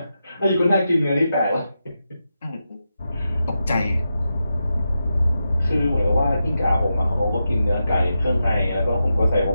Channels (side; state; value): both; inverted; correlation -0.88